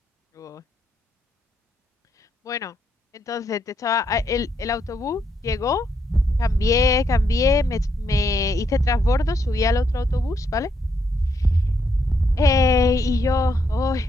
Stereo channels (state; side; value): normal; both; correlation 0.76